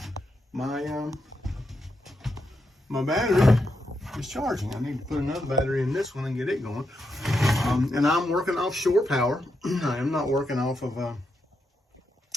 my my battery is charging. I need to put another battery in this one and get it going. And I'm working off shore power. I am not working off of the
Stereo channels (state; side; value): normal; both; correlation 0.83